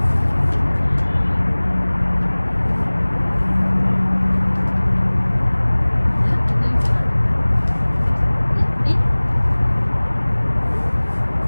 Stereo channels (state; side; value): inverted; both; correlation -1.00